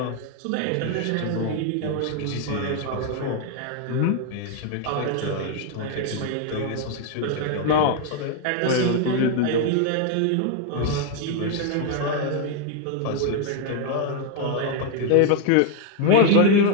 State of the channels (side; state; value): both; different; correlation 0.01